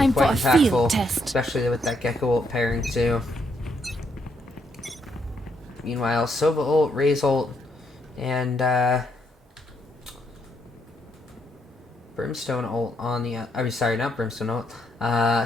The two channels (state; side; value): normal; both; correlation 0.75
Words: quite for a field impactful, test. especially with that Gecko ult pairing too. Meanwhile, Sova ult, Raze ult, and Brimstone ult on the. I mean, sorry, not Brimstone ult.